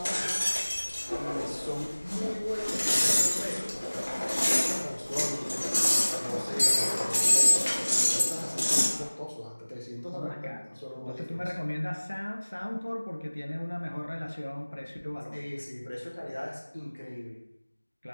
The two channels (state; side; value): inverted; both; correlation -1.00